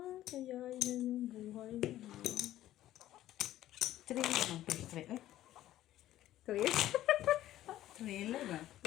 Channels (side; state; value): right; quieter; 13.7 dB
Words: Kaya yan yung buhay niya. Three naman. First three. Ay, Three? three lang ba?